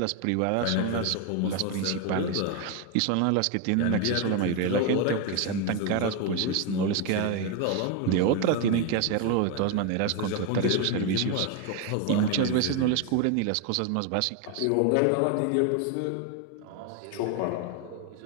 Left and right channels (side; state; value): both; different; correlation 0.02